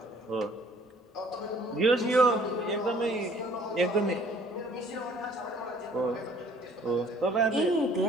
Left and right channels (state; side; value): normal; both; correlation 0.56